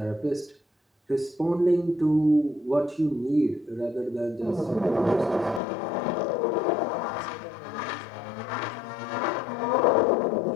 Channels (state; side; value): drops out; right; at 5.6 s